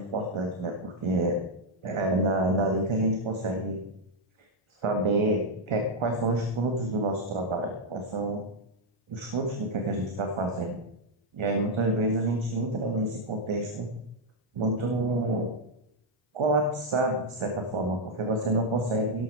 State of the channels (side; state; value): both; normal; correlation 0.00